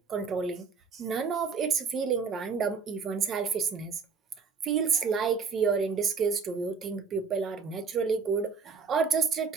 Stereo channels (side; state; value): left; quieter; 5.4 dB